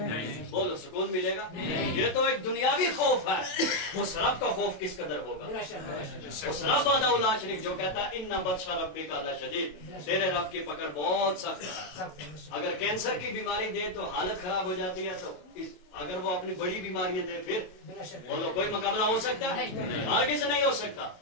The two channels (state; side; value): late; right; 27 ms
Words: बोलो, सुकून मिलेगा? ये तो एक दुनियावी खौफ है। उस रब का खौफ किस कदर होगा? उस रब वादा शरीफ जो कहता है इन्ना बदशा रब्बी का शदीद, तेरे रब की पकड़ बहुत सख्त है। अगर कैंसर की बीमारी दे तो हालत खराब हो जाती है, तो अगर वो अपनी बड़ी बीमारियां दे फिर बोलो कोई मुकाबला हो सकता है? हरगिज़ नहीं हो सकता।